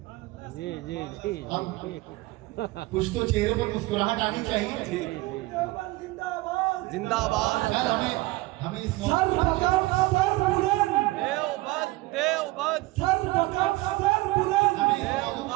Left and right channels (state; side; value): quieter; left; 20.8 dB